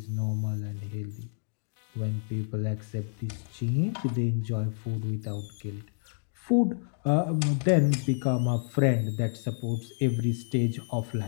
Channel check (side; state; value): right; silent; digital silence